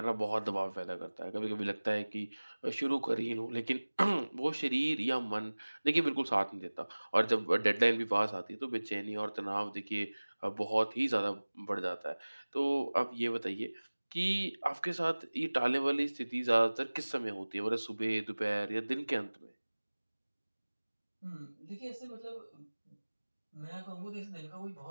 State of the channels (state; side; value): inverted; both; correlation -1.00